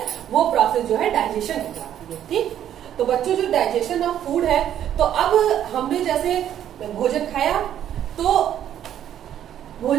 वो प्रोसेस जो है डाइजेशन कहलाती है। ठीक? तो बच्चों, जो डाइजेशन ऑफ फूड है, तो अब हमने जैसे भोजन खाया तो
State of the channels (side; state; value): left; quieter; 10.6 dB